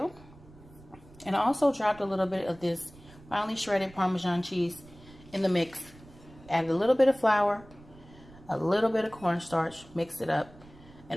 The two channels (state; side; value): noise; right; rumble, 22 dB below the sound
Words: And I also dropped a little bit of this finely shredded Parmesan cheese in the mix. Added a little bit of flour, a little bit of cornstarch, mixed it up.